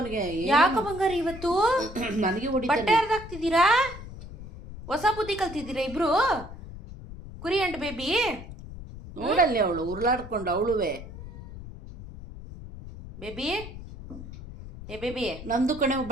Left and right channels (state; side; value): noise; left; rumble, 13 dB below the sound